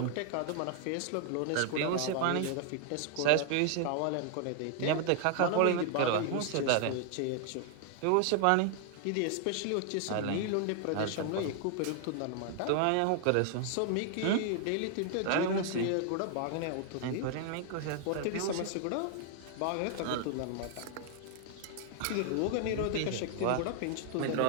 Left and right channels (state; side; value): different; both; correlation 0.00